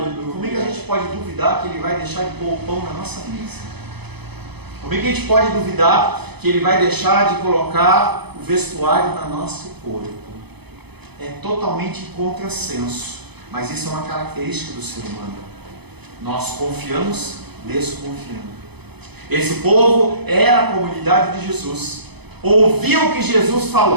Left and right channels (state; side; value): late; left; 0.98 ms